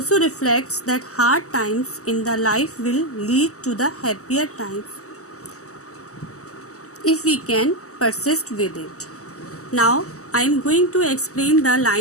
reflects that hard times in the life will lead to the happier times if we can persist with it. Now I am going to explain the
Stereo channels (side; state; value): right; late; 0.65 ms